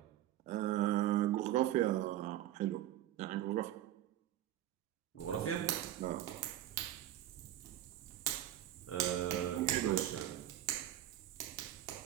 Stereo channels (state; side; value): quieter; left; 13.0 dB